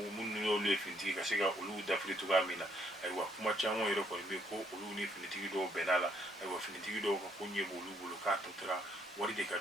minnu y'olu ye finitigi ka se ka olu dafiri cogoya min na ayiwa kuma caman yɛrɛ kɔni bɛ ko olu ni finitigi dɔw bɛnna la ayiwa finitigi dɔw ka ko ɲɛ b'olu bolo k'a tɔ tora wari de ka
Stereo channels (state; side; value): normal; both; correlation 0.69